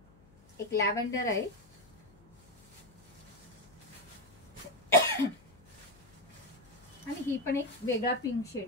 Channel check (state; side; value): noise; left; hum, 26 dB below the sound